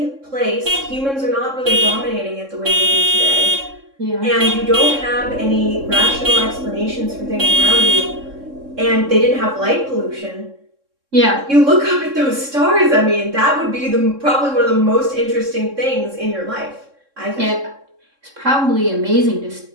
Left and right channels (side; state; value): left; late; 3.7 ms